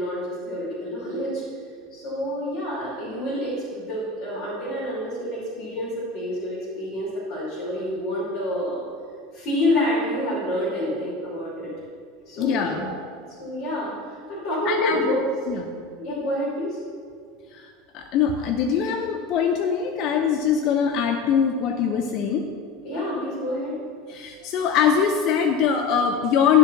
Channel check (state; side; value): quieter; right; 4.1 dB